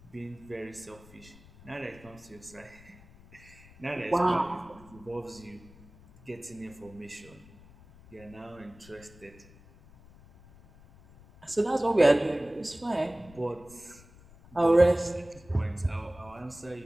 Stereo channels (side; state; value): left; noise; rumble, 23 dB below the sound